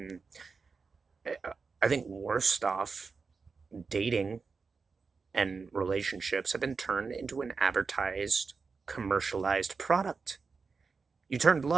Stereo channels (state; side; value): quieter; left; 4.8 dB